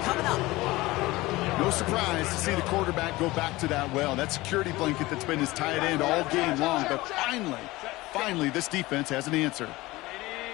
coming up. No surprise to see the quarterback go back to that well. That security blanket that's been his tight end all game long. But finally, this defense has an answer.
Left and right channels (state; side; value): quieter; right; 19.8 dB